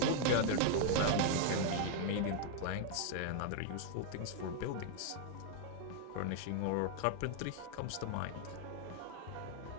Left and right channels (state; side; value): different; both; correlation 0.00